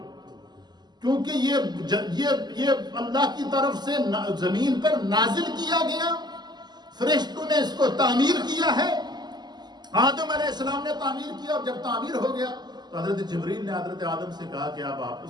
کیونکہ یہ اللہ کی طرف سے زمین پر نازل کیا گیا، فرشتوں نے اس کو تعمیر کیا ہے، آدم علیہ السلام نے تعمیر کیا، اور جب تعمیر ہو گیا تو حضرت جبریل نے حضرت آدم سے کہا کہ اب آپ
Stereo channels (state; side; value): late; left; 0.21 ms